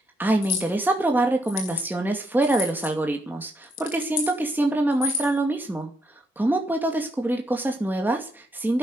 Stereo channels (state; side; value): normal; both; correlation 0.76